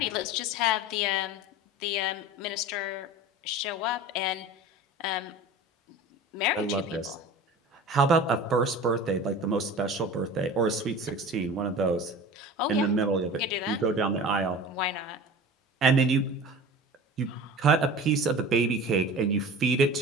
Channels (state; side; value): normal; both; correlation 0.37